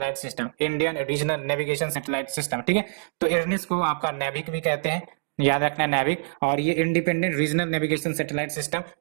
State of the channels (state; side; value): silent; left; digital silence